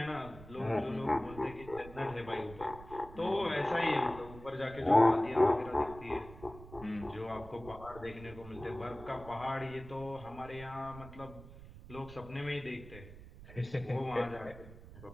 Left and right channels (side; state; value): right; noise; rumble, 16 dB below the sound